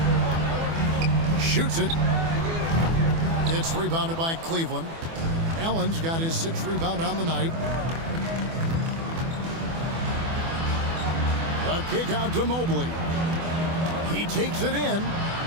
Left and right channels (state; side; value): late; left; 24 ms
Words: Shoots it. It's rebounded by Cleveland. Allen's got his 6th rebound on the night. A kick out to Mobley. He takes it in.